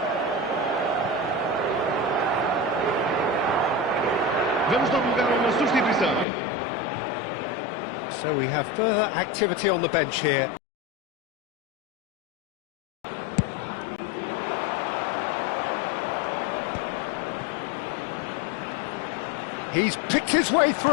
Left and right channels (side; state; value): right; drops out; at 6.2 s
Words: Vamos dar lugar a uma substituição. So we have further activity on the bench here. He's picked his way